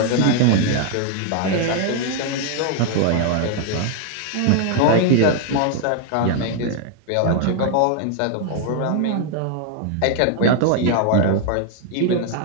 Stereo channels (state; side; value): different; both; correlation 0.00